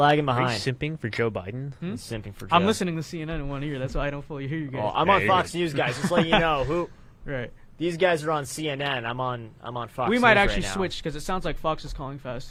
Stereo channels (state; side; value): identical; both; correlation 1.00